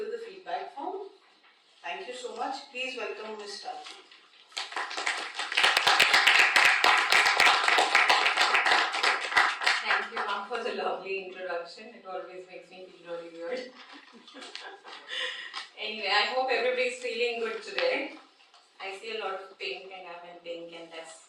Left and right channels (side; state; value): both; identical; correlation 1.00